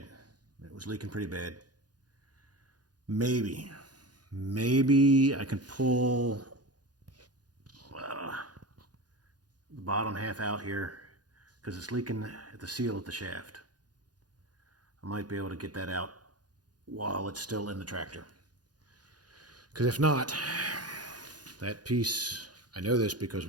It was leaking pretty bad. Maybe I can pull the bottom half out here, because it's leaking at the seal of the shaft. I might be able to get that out while it's still in the tractor. Because if not, that piece, I know this because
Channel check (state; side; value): late; left; 0.69 ms